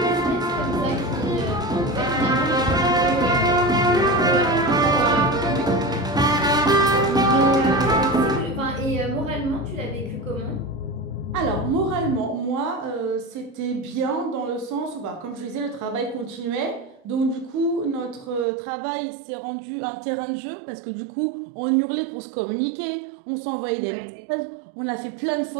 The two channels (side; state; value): left; drops out; at 18.4 s